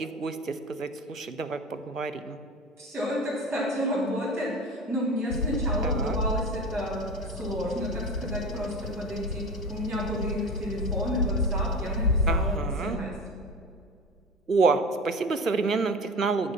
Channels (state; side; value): normal; both; correlation 0.32